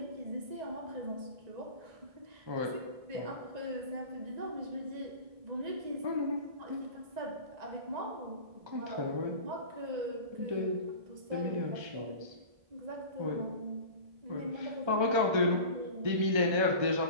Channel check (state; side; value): late; left; 1.3 ms